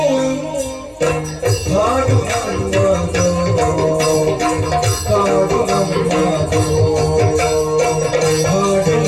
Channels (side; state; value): both; identical; correlation 1.00